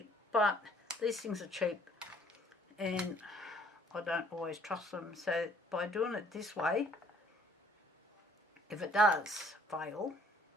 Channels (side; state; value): both; normal; correlation 0.60